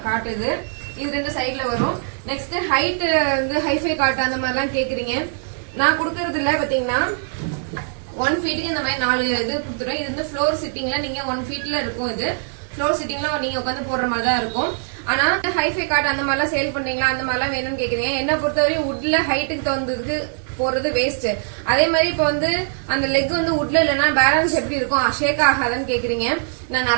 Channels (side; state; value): left; silent; 65 dB below the other